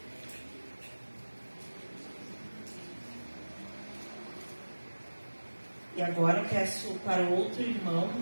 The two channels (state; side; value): inverted; both; correlation -1.00